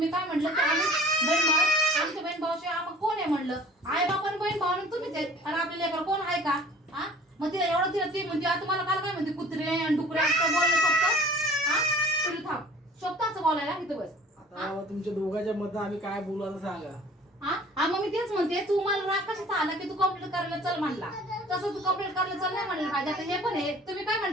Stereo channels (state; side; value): normal; both; correlation 0.49